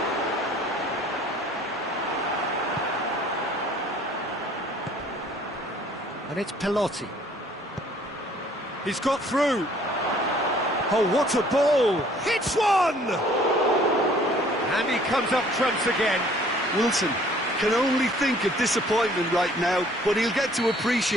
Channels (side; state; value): both; normal; correlation 0.56